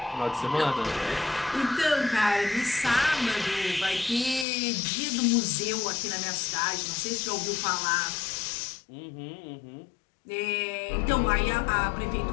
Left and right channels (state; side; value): drops out; right; at 4.5 s